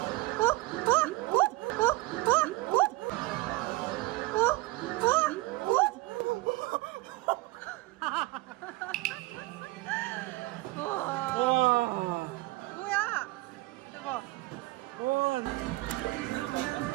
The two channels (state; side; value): quieter; left; 20.1 dB